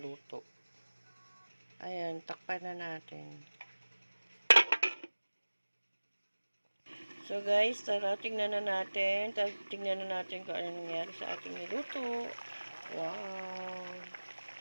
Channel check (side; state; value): both; inverted; correlation -1.00